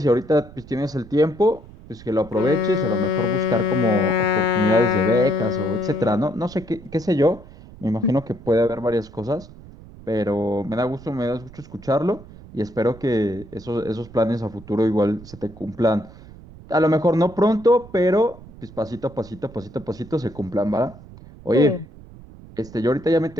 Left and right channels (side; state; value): right; noise; rumble, 19 dB below the sound